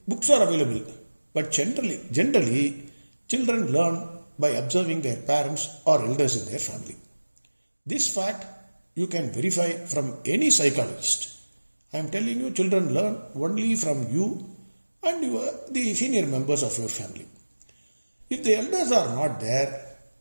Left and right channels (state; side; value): inverted; both; correlation -1.00